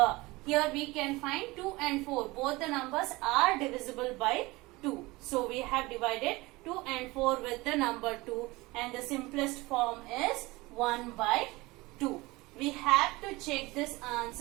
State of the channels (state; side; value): quieter; left; 21.9 dB